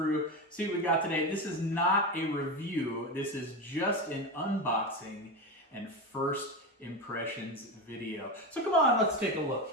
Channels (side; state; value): both; normal; correlation 0.19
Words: see what we got today. This is not a review. This is just an unboxing and first impressions video. So come on, let's take a look